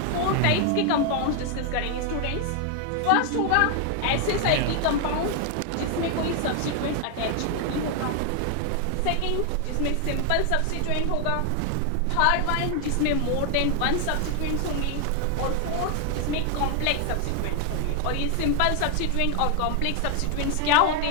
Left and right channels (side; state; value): both; different; correlation 0.00